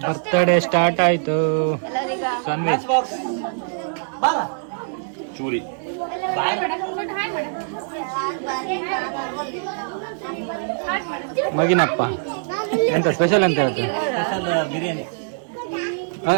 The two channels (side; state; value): left; silent; digital silence